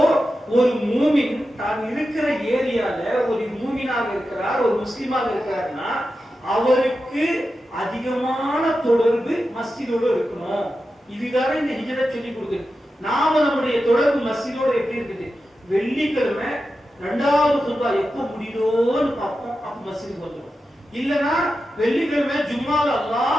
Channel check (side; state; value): both; normal; correlation 0.91